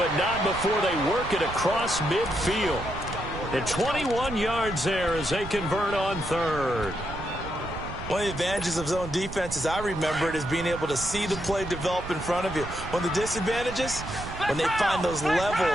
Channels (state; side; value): noise; right; rumble, 10 dB below the sound